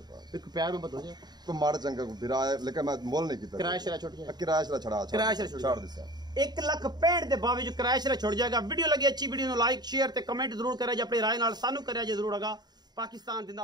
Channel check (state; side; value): late; left; 0.20 ms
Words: ਇੱਕ ਪਿਆਰ में बता तो मार चंगा बिरा है लेकिन मैं मोल नहीं किया किराया शरा छोड़ गया किराया शरा छड़ा छोड़ दिया 1,65,000 ਦੇ ਬਾਅਦ ਕਿਰਾਇਆ ਸ਼ਰਾ ਛੁੱਟ ਜਾਏਗਾ ਵੀਡੀਓ ਲੱਗੀ ਅੱਛੀ ਵੀਡੀਓ ਨੂੰ ਲਾਈਕ ਸ਼ੇਅਰ ਤੇ ਕਮੈਂਟ ਜ਼ਰੂਰ ਕਰਿਆ ਜੇ ਆਪਣੀ ਰਾਏ ਨਾਲ ਸਾਨੂੰ ਕਰਿਆ ਜੇ ਜ਼ਰੂਰ ਹੋਗਾ ਪਾਕਿਸਤਾਨ